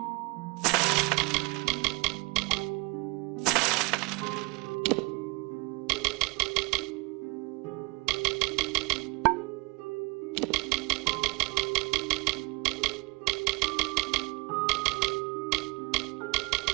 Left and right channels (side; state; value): left; quieter; 26.5 dB